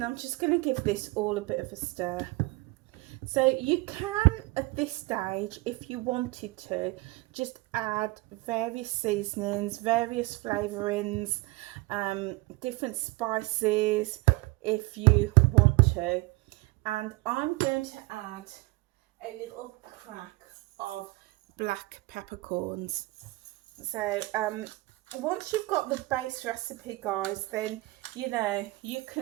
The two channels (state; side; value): quieter; left; 22.3 dB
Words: I'm just going to give this all a bit of a stir. So you can, at this stage, if you wanted to, just add various seasonings, various flavourings, different spices if you want to. And I'm going to add a little crack of black peppercorns. So once you've got the base recipe, guys, then you know you